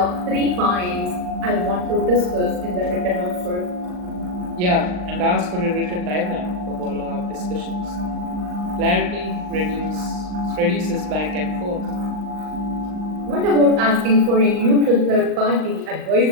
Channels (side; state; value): left; late; 39 ms